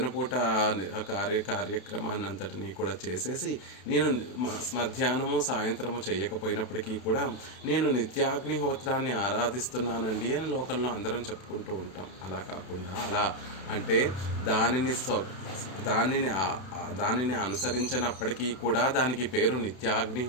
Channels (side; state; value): right; late; 32 ms